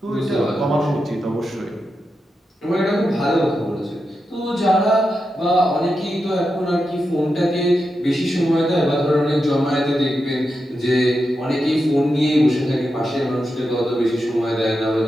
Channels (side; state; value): both; normal; correlation 0.88